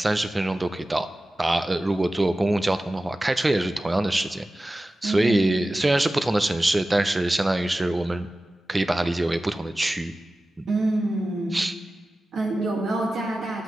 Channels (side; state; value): both; normal; correlation 0.95